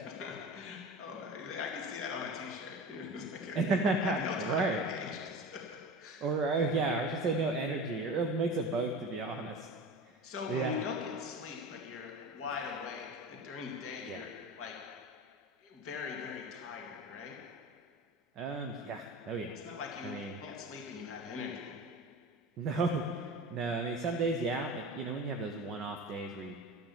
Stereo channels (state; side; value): normal; both; correlation 0.32